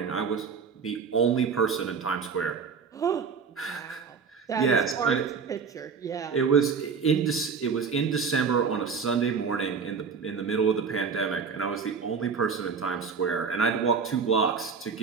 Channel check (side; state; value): left; quieter; 5.8 dB